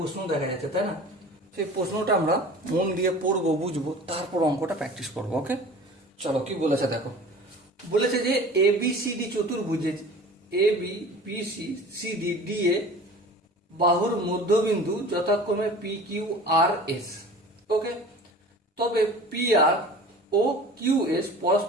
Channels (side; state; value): both; normal; correlation 0.41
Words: দেখা যাচ্ছে, তাই না? সেই প্রশ্নটা আমরা মন দিয়ে পড়বো, বুঝবো, তারপর অঙ্কটা প্র্যাকটিস করবো। ওকে, চলো কি বলেছে দেখো। বলেছে যে এ বি সি ডি চতুর্ভুজে A B B C C D D A বাহুর মধ্যবিন্দু যথাক্রমে P Q R S. Okay, তবে পি আর ও কিউ এস